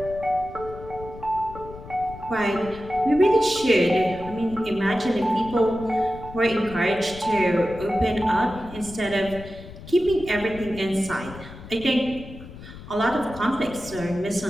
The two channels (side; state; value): left; noise; rumble, 15 dB below the sound